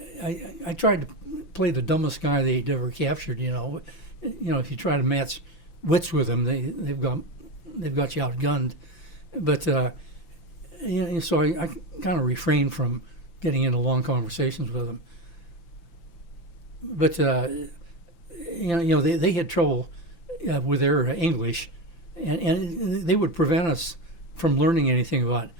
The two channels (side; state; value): right; late; 5.9 ms